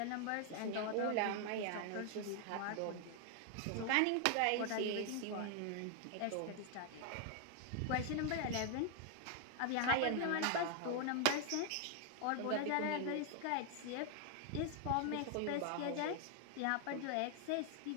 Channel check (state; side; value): different; both; correlation 0.00